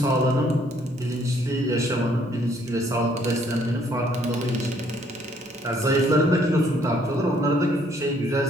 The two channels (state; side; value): normal; both; correlation 0.65